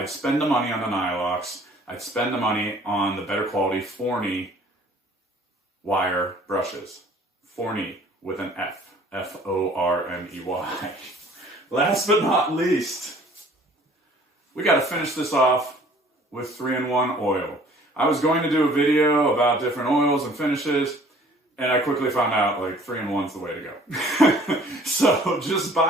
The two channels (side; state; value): both; normal; correlation 0.54